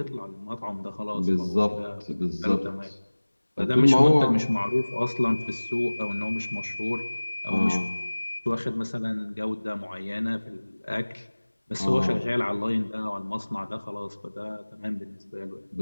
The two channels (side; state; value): both; inverted; correlation -1.00